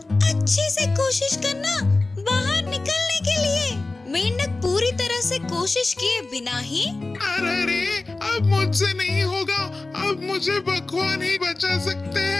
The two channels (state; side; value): quieter; right; 3.3 dB